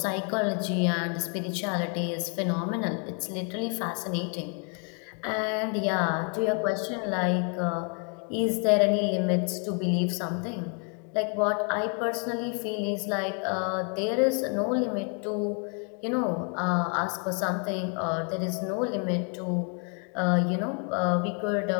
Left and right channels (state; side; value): quieter; right; 40.0 dB